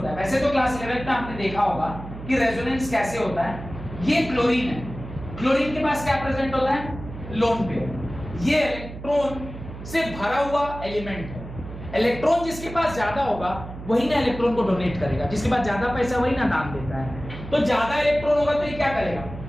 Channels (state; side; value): noise; right; hum, 12 dB below the sound